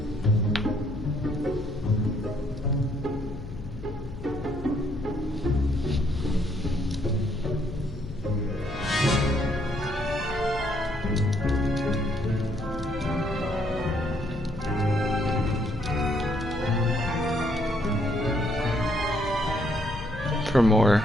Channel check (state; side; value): noise; left; hum, 11 dB below the sound